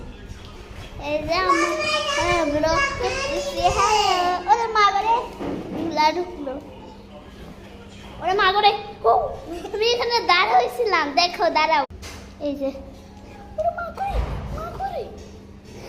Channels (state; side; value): identical; both; correlation 1.00